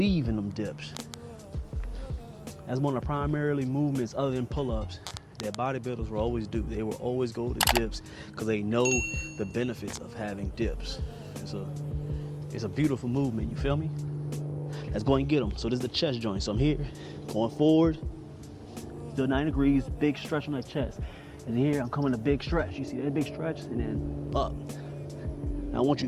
in them dips. That's one of the primarily movements other than pull-ups that bodybuilders will always do. They will always go to dips because they know the benefits of having dips. It's a beautiful movement, you feel me? Let's go and get them. So this is the chest joint. So I'm here, going forward, still 90 degrees, big stretch on that chest. And here I'm coming a big stretch. You see that big stretch? And then up. Now I want you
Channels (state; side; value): identical; both; correlation 1.00